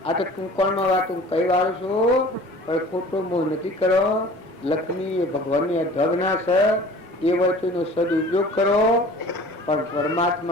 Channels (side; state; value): both; normal; correlation 0.45